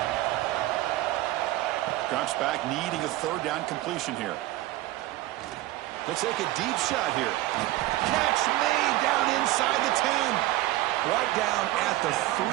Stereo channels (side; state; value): left; quieter; 16.9 dB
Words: Drops back, needing a third down completion here. He'll take a deep shot here. Catch made down inside the 10. Right down at the 3,